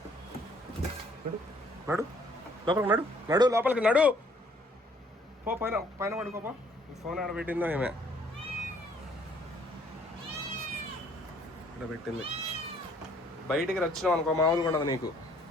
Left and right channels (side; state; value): both; normal; correlation 0.61